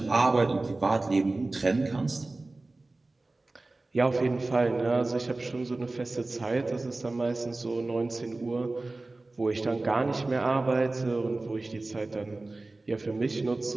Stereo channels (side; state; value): left; quieter; 3.1 dB